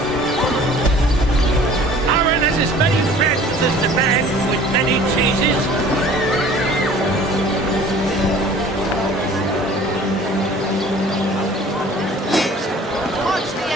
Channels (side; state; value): both; normal; correlation 0.48